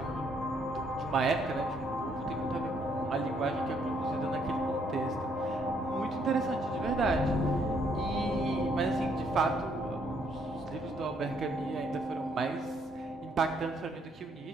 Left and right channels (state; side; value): normal; both; correlation 0.69